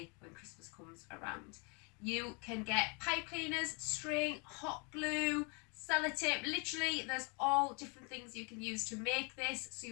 when Christmas comes around. You can get pipe cleaners, string, hot glue, sellotape. Literally there's all different things you can use to make this, so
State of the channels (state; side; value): quieter; right; 33.3 dB